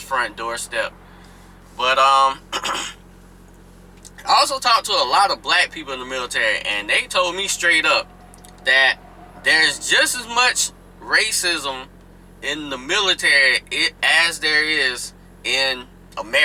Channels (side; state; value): both; identical; correlation 1.00